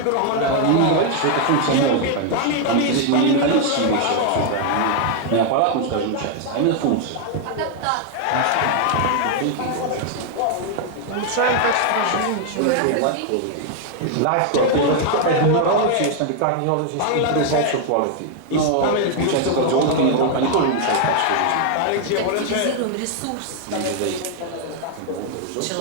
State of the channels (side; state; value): both; different; correlation 0.00